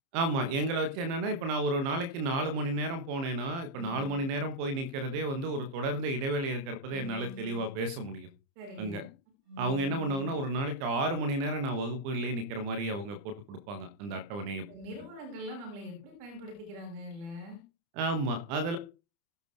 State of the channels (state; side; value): late; left; 30 ms